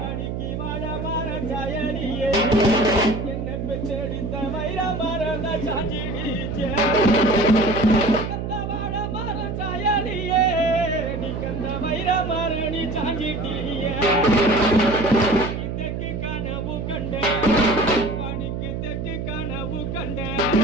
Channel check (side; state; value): right; noise; hum, 4 dB below the sound